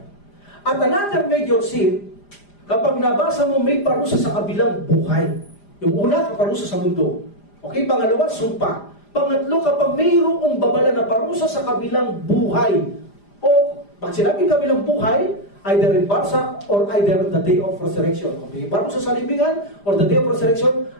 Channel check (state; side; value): late; right; 5.0 ms